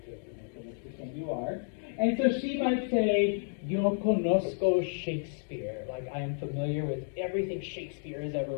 you're joking. You are. And so she might say, Yo conozco Shakespeare. Like, I am familiar with everything Shakespeare has ever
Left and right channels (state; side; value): silent; right; digital silence